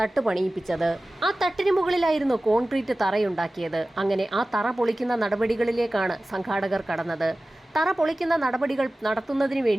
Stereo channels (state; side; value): normal; both; correlation 0.96